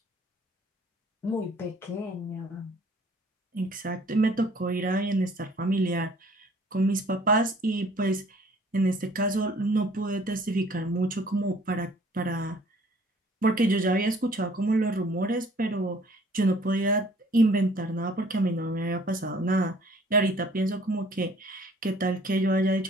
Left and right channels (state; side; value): normal; both; correlation 0.55